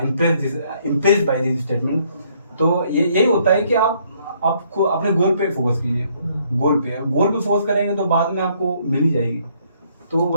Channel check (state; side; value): inverted; both; correlation -0.67